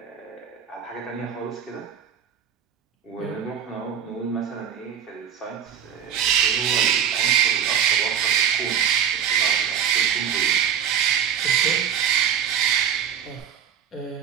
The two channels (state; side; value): quieter; left; 8.5 dB